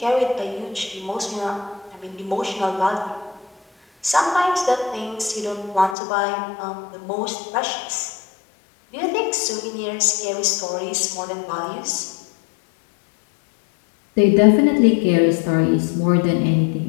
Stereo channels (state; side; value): drops out; right; at 6.0 s